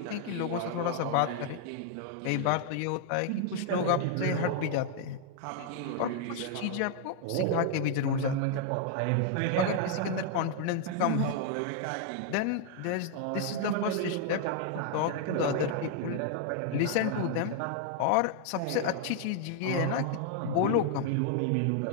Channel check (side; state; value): both; different; correlation 0.00